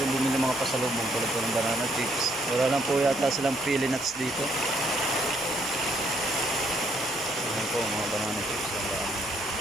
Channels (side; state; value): both; normal; correlation 0.69